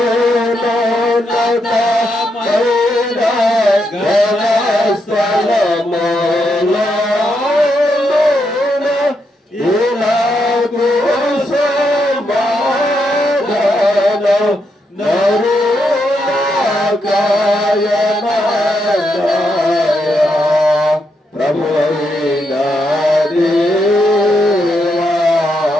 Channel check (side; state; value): both; normal; correlation 0.81